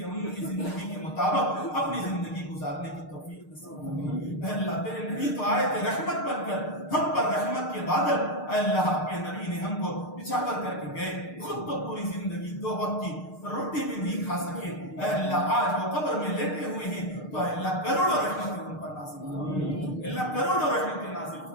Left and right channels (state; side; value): late; right; 6.6 ms